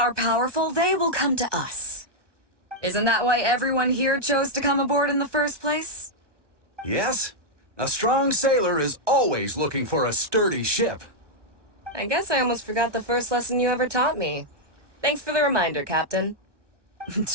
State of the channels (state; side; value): late; left; 1.1 ms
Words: powerful, they will come to us. Isn't that why everyone here chose to come aboard in the first place? Yes? A strong sailor is always looking for a sturdy ship. I guess I almost forgot the first lesson you ever taught me. Thanks for the reminder, Captain.